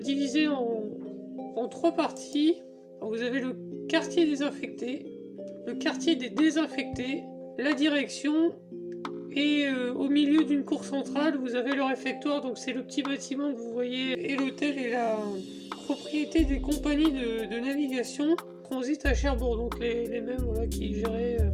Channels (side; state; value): both; identical; correlation 1.00